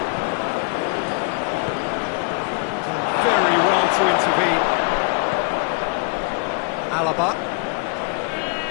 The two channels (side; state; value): right; quieter; 37.7 dB